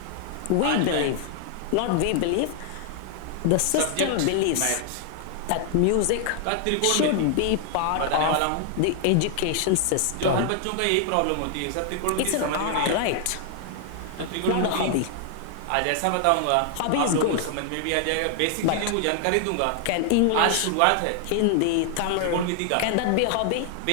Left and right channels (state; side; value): different; both; correlation 0.00